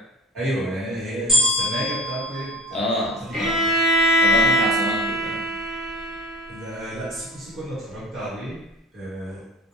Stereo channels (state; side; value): normal; both; correlation 0.39